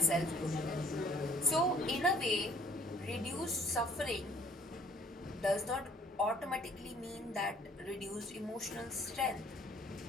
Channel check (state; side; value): normal; both; correlation 0.57